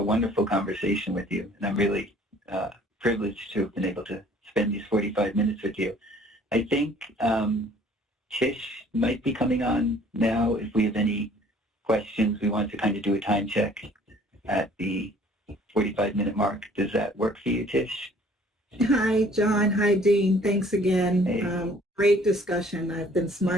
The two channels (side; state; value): both; normal; correlation 0.55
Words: wonderful conversation with you, and I'm really privileged to have been able to spend these 45 minutes with you. I think Tish might be coming on now. If we have any questions, we want to kind of do a time check at the 45-minute mark. Does that work for you, Tish? Hi, John. Hi, Dean. Thanks again. Hey. Great discussion. I've been